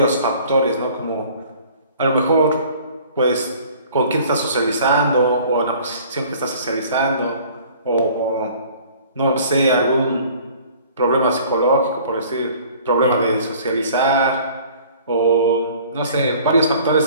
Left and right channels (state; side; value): inverted; both; correlation -0.51